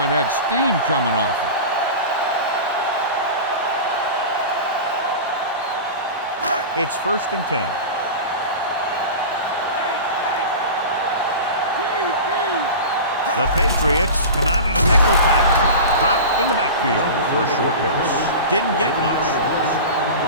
had steam coming off it. It's first and 10. The Patriots come out in a nickel package. Dropped in the backfield for a short loss. Didn't get much.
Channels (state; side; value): inverted; both; correlation -0.30